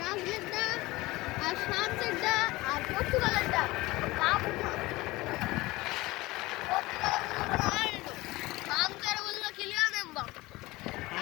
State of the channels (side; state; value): right; quieter; 20.4 dB